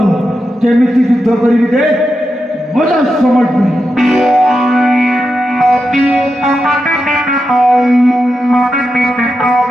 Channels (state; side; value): normal; both; correlation 0.88